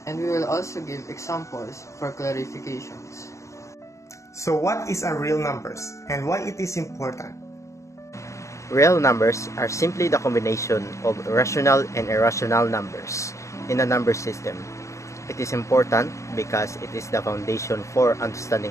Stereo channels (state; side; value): late; right; 0.15 ms